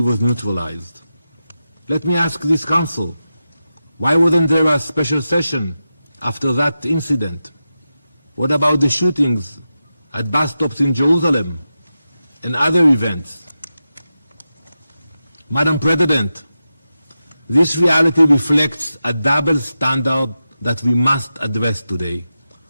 was neutralized. Let me ask this council, why wasn't there a special session after that incident? What about the shootings at bus stops in Jerusalem and other events? Madam President, this reality reflects a double standard that we must address today.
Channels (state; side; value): inverted; both; correlation -0.91